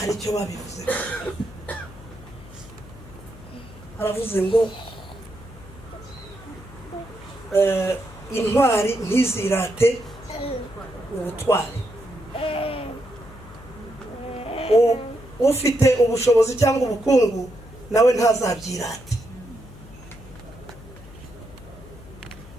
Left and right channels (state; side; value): noise; left; hum, 18 dB below the sound